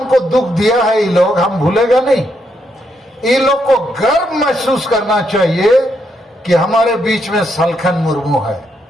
दुख दिया है ये लोग हम भूलेगा नहीं। ये लोग को गर्व महसूस करना चाहिए कि हमारे बीच में सलखन मुर्मू है।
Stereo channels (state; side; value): normal; both; correlation 0.78